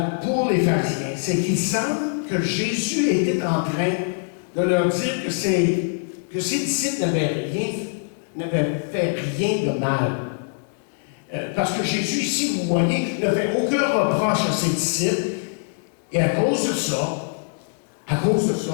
pour les pharisiens, c'est qu'il semble que Jésus était en train de leur dire que ses disciples n'avaient fait rien de mal. Parce que Jésus, ici, vous voyez, ne fait aucun reproche à ses disciples. Et à cause de ça,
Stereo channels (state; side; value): silent; right; digital silence